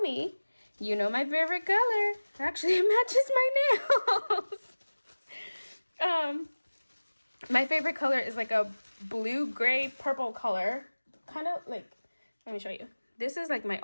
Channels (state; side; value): inverted; both; correlation -1.00